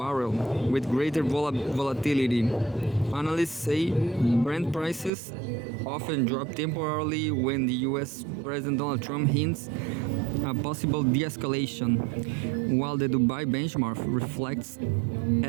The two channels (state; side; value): drops out; left; at 5.1 s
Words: with greater volatility. Analysts say Brent prices often drop temporarily when the US President Donald Trump hints a possible de-escalation, while the Dubai benchmark reflects